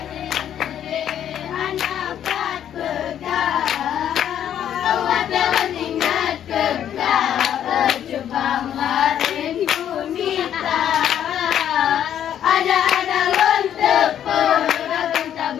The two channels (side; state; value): right; quieter; 10.1 dB